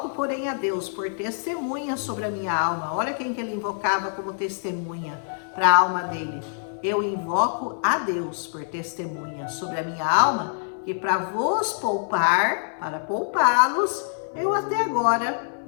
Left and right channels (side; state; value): right; silent; 58 dB below the other